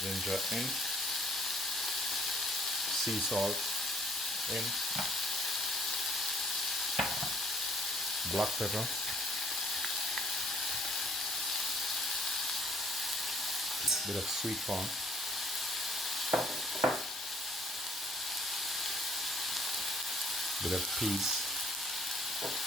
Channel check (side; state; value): both; normal; correlation 0.61